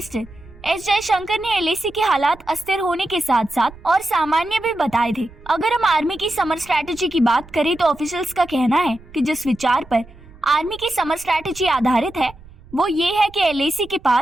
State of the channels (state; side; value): noise; right; rumble, 21 dB below the sound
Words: S Jaishankar ने एलएसी के हालात अस्थिर होने के साथ साथ और सामान्य भी बताए थे। अगर हम आर्मी की समर स्ट्रैटेजी की बात करें तो ऑफिशियल्स का कहना है कि जिस विचार पर आर्मी की समर स्ट्रैटेजी आधारित है वो ये है कि एलएसी के